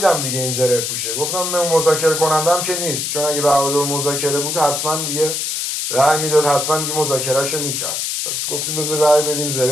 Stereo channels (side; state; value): left; noise; hiss, 2 dB below the sound